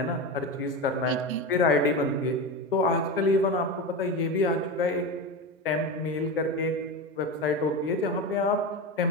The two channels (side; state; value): both; normal; correlation 0.21